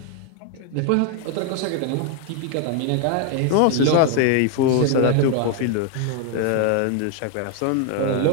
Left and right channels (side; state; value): both; different; correlation 0.01